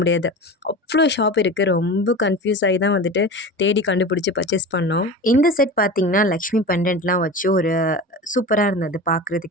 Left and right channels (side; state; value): both; normal; correlation 0.31